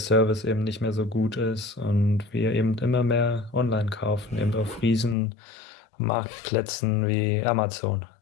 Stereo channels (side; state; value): right; drops out; at 5.2 s